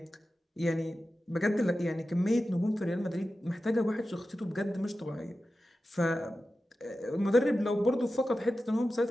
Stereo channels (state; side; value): normal; both; correlation 0.93